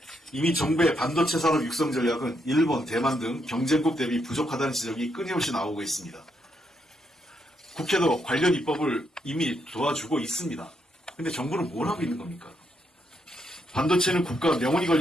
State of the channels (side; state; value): both; normal; correlation 0.78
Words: 이미 정부의 반도체 산업 육성 전략은 일본, 대만 등 경쟁국 대비 부족하다는 지적이 끊임없이 나오고 있습니다. 국회도 관련 입법을 이미 도와주고 있습니다. 근데 정부는 뭘 하고 있는 겁니까? 반도체는 국가 명운이